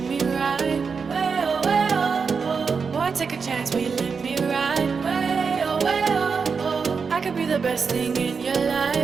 me right. Way oh, way oh, oh. Boy, take a chance, will you let me ride? Way oh, oh. I could be the best thing in your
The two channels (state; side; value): quieter; left; 5.4 dB